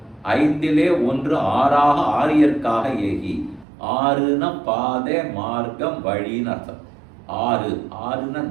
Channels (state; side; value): drops out; left; at 3.7 s